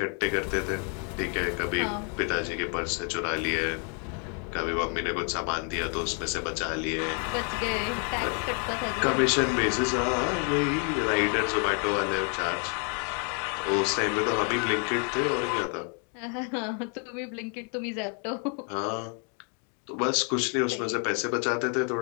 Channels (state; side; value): quieter; right; 39.6 dB